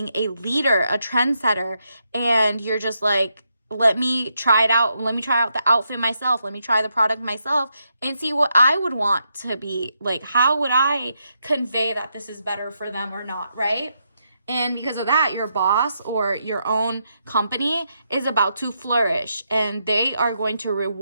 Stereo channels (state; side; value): inverted; both; correlation -0.81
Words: a leader, a trendsetter, and you're just like, let me try it out. Let me try out the outfit myself. Let me try the product myself and see what I would want to be like. How would I convey that this is better for them or not, right? And because of that, your boss or your own company is about to flourish, and they are going to